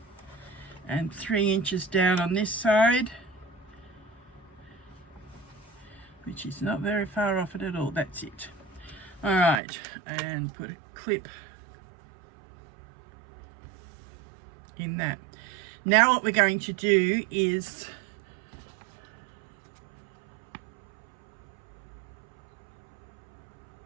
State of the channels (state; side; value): drops out; left; at 9.6 s